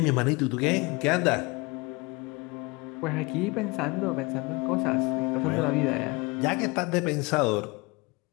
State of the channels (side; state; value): right; quieter; 26.1 dB